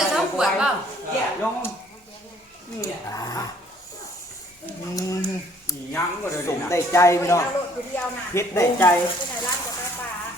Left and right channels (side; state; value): both; normal; correlation 0.60